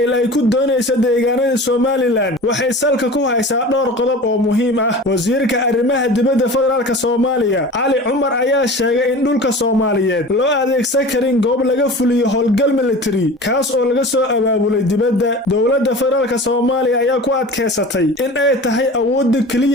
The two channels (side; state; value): both; normal; correlation 0.37